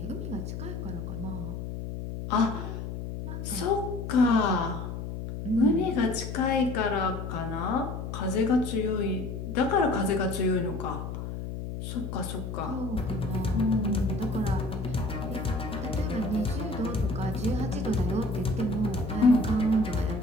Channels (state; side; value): noise; left; hum, 6 dB below the sound